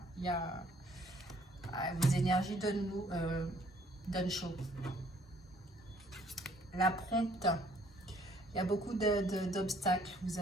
Il y a vos énergies donnent chaud. La prompte, il y a beaucoup d'obstacles. Vous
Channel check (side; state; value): both; normal; correlation 0.62